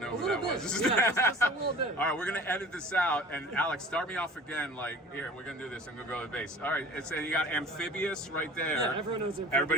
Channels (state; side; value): normal; both; correlation 0.44